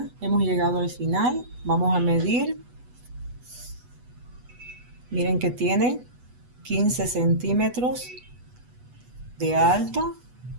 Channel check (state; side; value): late; left; 8.1 ms